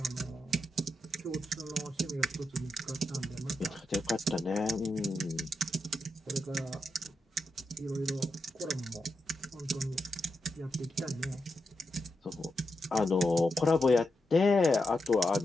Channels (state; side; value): normal; both; correlation 0.85